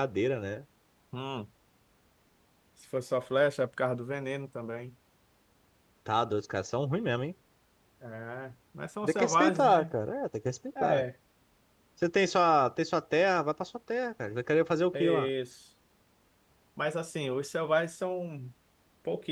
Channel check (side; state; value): both; identical; correlation 1.00